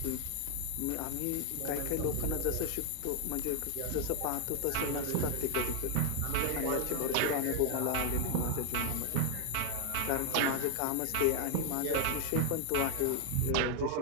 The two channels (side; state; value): both; different; correlation 0.00